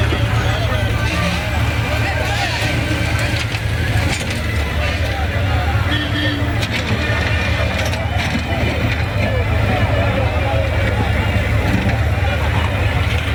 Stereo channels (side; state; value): both; identical; correlation 1.00